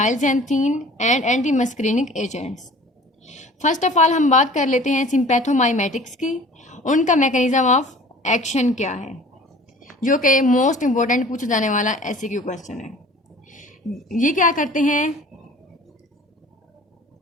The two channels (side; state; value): both; normal; correlation 0.46